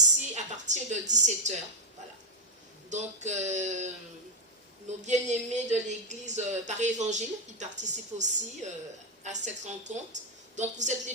à partir de 17h. Voilà. Donc, nos bien-aimés de l'église Paris Évangile, ils participent aussi à cette rencontre. Donc, vous êtes les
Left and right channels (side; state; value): both; normal; correlation 0.01